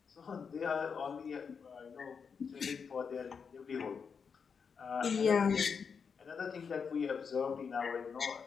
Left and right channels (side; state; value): right; quieter; 6.0 dB